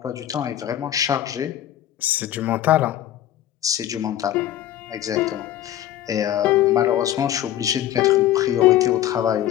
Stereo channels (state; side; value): quieter; right; 12.2 dB